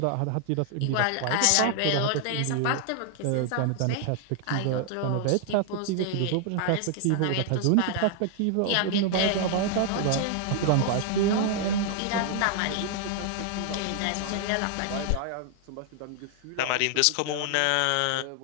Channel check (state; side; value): different; both; correlation 0.00